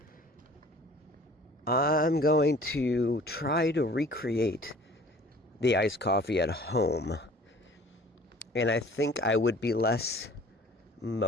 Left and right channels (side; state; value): both; normal; correlation 0.49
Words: I'm going to try to recreate the iced coffee at home. And I think I would be less